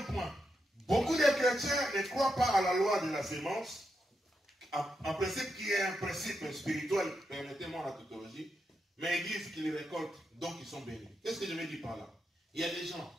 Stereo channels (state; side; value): normal; both; correlation 0.84